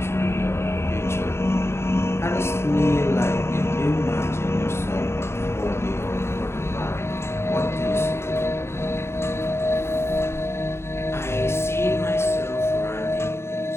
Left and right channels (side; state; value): right; late; 0.12 ms